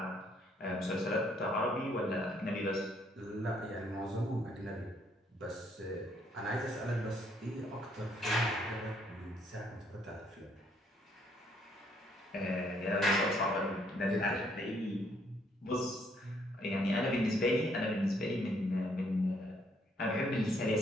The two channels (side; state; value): both; normal; correlation 0.68